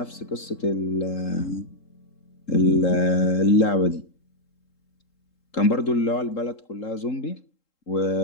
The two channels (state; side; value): late; right; 3.8 ms